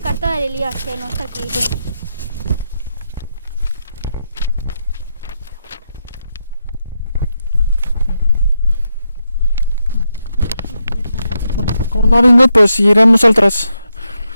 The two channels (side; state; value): both; inverted; correlation -0.83